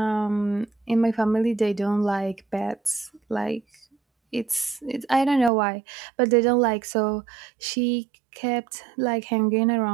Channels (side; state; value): left; drops out; at 5.5 s